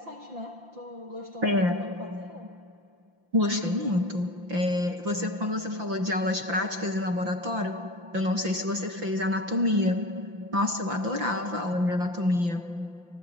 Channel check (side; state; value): left; late; 5.8 ms